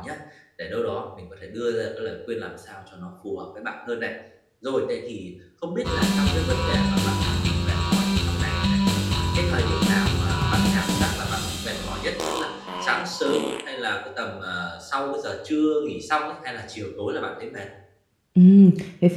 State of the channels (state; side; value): identical; both; correlation 1.00